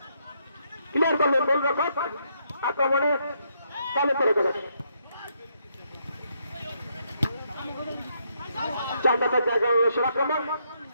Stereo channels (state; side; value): inverted; both; correlation -0.75